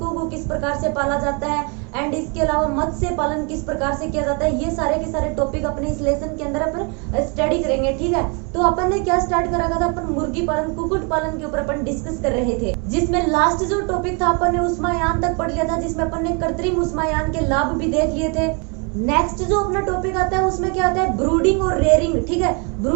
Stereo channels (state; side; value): quieter; left; 34.1 dB